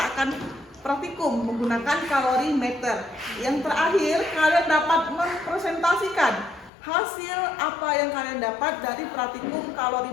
akan praktikum menggunakan kalorimeter. Yang terakhir kalian dapat mempresentasikan hasil apa yang kalian dapat dari praktikum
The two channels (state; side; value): drops out; right; at 6.7 s